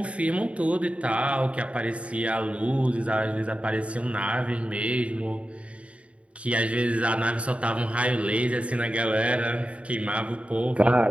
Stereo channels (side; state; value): left; late; 0.063 ms